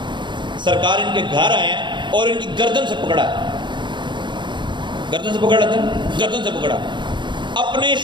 سرکار ان کے گھر آئے ہیں اور ان کی گردن سے پکڑا ہے. گردن سے پکڑا تھا, گردن سے پکڑا, اپنے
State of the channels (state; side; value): late; left; 0.23 ms